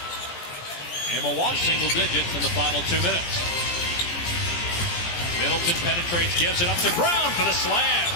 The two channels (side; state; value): right; late; 17 ms